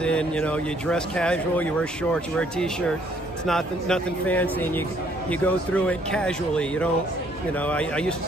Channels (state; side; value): normal; both; correlation 0.65